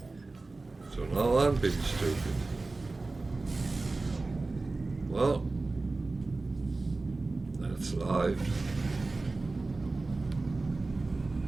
So now I'm being stupid. Well, that's life.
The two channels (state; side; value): quieter; left; 3.4 dB